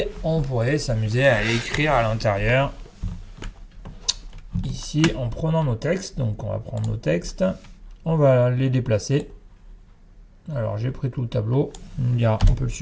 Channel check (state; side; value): identical; both; correlation 1.00